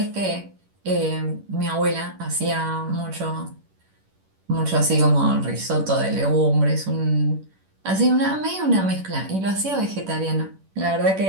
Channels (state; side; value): late; left; 11 ms